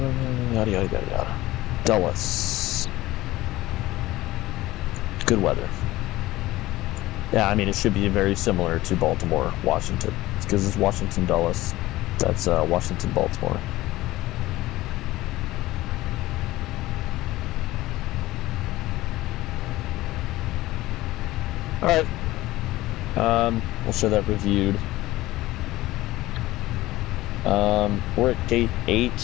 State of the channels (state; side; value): quieter; right; 17.5 dB